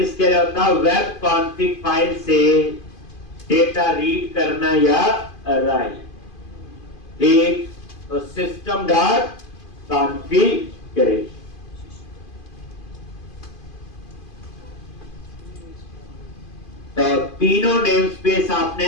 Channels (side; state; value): right; late; 2.5 ms